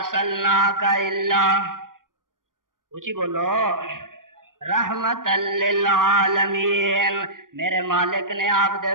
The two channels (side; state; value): left; late; 0.90 ms